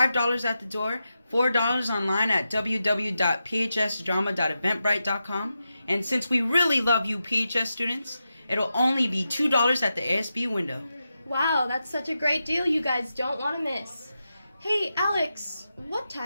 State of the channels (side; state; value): both; inverted; correlation -0.89